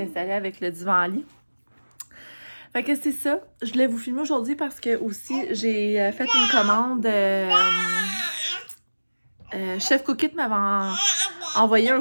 installée avec le divan-lit. Fait que c'est ça. Je voulais vous filmer aujourd'hui parce que aussi, j'ai fait une commande. Chef Cookit m'avait envoyé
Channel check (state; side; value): inverted; both; correlation -1.00